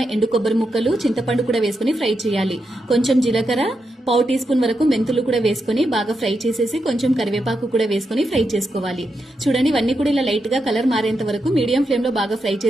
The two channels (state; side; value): normal; both; correlation 0.85